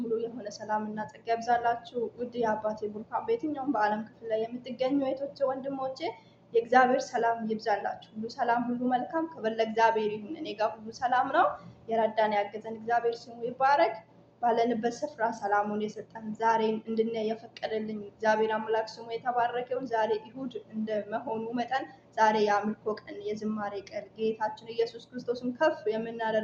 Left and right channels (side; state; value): both; identical; correlation 1.00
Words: ሙሉ የሆነ ሰላምና ጸጋ ይብዛላችሁ። ውድ የአባቴ ቡሩካን በየትኛውም በዓለም ክፍል ላይ የምትገኙ እህቶቼ፣ ወንድሞቼ የእግዚአብሔር ሰላም ይብዛላችሁ። ሁሉ ሰላም፣ ሁሉ መልካም ክብር ለእግዚአብሔር ይሁን። እኔ ጋር ሁሉ ሰላም ነው። የረዳን ያገዘን እግዚአብሔር ስሙ ይባረክ። ባለንበት ስፍራ ሰላሙን የሰጠን ዛሬን እንድናይ የፈቀደልኝ እግዚአብሔር አምላክ ስሙ የተባረከውን ዛሬ እሁድ እንደመሆኑ መጠን ዛሬ የአምልኮ ቀን፣ የዝማሬ ቀን፣ ጌታችን ኢየሱስ ክርስቶስን ከፍ